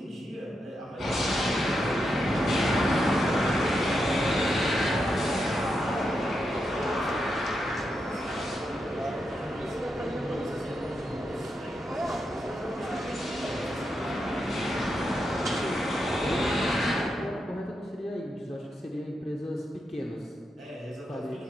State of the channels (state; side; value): normal; both; correlation 0.84